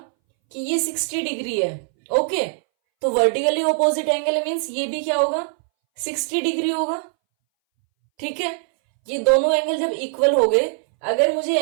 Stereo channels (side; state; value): left; silent; 63 dB below the other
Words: कि ये 60 डिग्री है, ओके, तो वर्टिकली ऑपोजिट एंगल मीन्स ये भी क्या होगा, 60 डिग्री होगा, ठीक है। ये दोनों एंगल जब इक्वल हो गए, अगर मुझे